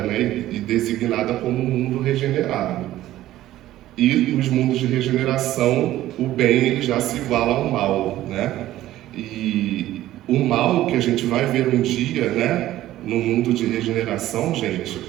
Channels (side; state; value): left; quieter; 14.4 dB